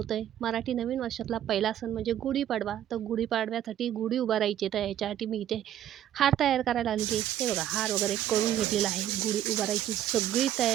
आहे. मराठी नवीन वर्षातला पहिला सण म्हणजे गुढीपाडवा. तर गुढीपाडव्यासाठी गुढी उभारायची, तर याच्यासाठी मी इथे हार तयार करायला आलेली आहे. हे बघा, हार वगैरे करून घेतलेला आहे. गुढी उभारायची सगळी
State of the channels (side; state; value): left; quieter; 11.3 dB